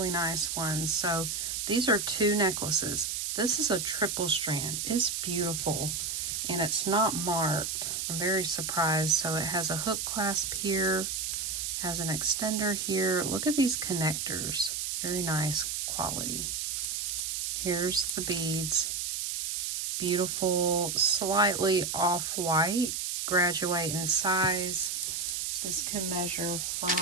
nice ones. So these are 2 necklaces. This is a triple strand. It's beautiful. And it's not marked. I'm very surprised. So it has a hook clasp here, has an extender here. Look at these connectors. Very nice quality. Here's the beads. Beautiful, slightly off-white. Graduate in size. This can measure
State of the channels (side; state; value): right; noise; hiss, 2 dB below the sound